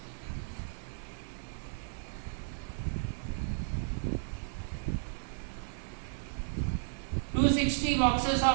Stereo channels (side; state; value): left; silent; digital silence